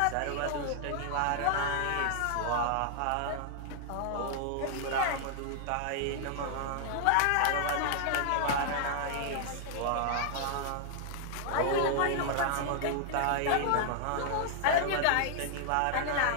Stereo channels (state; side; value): different; both; correlation -0.01